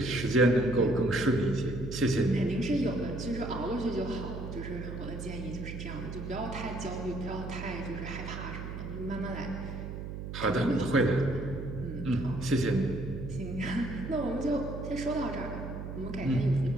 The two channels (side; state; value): right; noise; hum, 7 dB below the sound